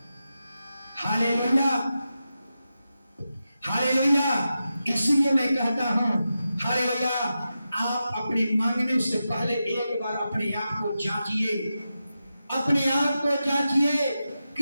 Hallelujah, hallelujah. इसलिए मैं कहता हूं, हालेलुया, आप अपने मांगने से पहले एक बार अपने आप को जांचिए, अपने आप को जांचिए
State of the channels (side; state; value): both; inverted; correlation -0.90